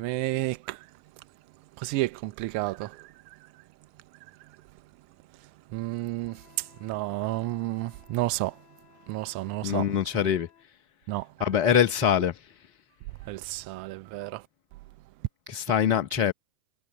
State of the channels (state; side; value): late; left; 4.2 ms